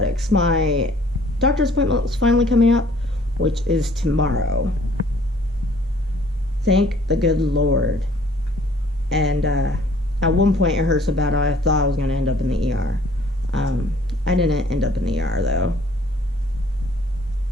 My doctor's appointment is finally coming up, which is tomorrow. Thank the good Lord. And at one point it hurt so bad I thought I was going to end up in the ER. I didn't end up in the ER though,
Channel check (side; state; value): both; normal; correlation 0.57